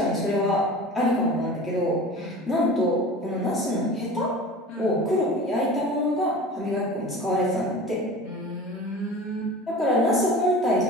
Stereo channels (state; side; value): normal; both; correlation 0.37